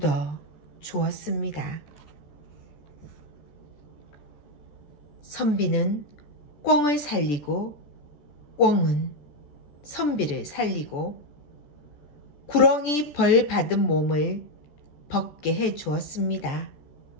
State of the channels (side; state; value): right; late; 14 ms